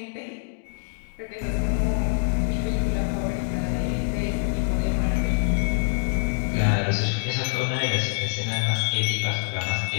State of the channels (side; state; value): right; silent; 62 dB below the other